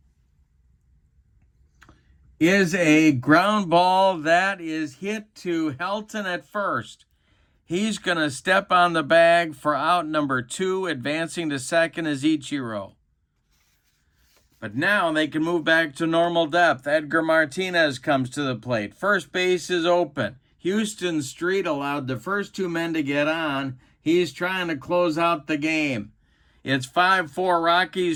is a ground ball that is hit to Helton at first. He's going to step on the bag for out number 2. Advancing to second is Ichiro. But now they can move back to normal depth. Edgar Martinez comes to the plate. First base is open. Houston Street allowed the first 2 men to get on. He's trying to close out the game. It's 5-4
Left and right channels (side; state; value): both; identical; correlation 1.00